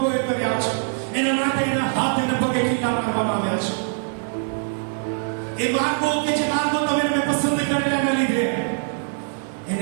કર્યા છે, એના માટે એના હાથ અને પગે ખીલા મારવામાં આવ્યા છે. એ માર્ગો કે જે માર્ગો તમે એને પસંદ કરેલા એના લીધે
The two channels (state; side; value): silent; left; digital silence